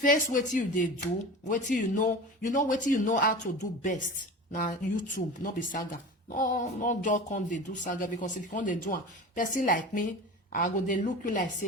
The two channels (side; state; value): both; normal; correlation 0.33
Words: what you they do, what you know what you know how to do best. Now YouTube, not be saga. No just come they do saga because if you come they do a person like me, I go they look you like